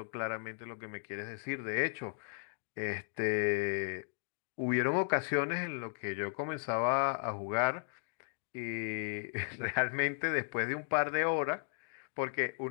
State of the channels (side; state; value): right; silent; digital silence